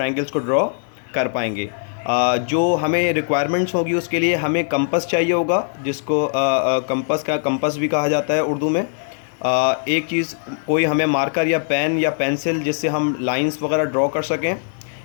को ड्रॉ कर पाएंगे। जो हमें रिक्वायरमेंट्स होगी उसके लिए हमें कंपास चाहिए होगा, जिसको कंपास भी कहा जाता है उर्दू में। एक चीज़, कोई हमें मार्कर या पेन या पेंसिल जिससे हम लाइंस वगैरह ड्रॉ कर सकें।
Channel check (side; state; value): right; silent; 65 dB below the other